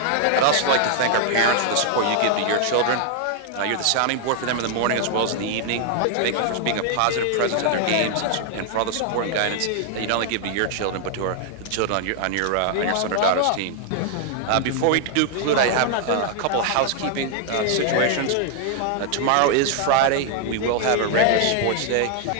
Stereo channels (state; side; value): different; both; correlation 0.00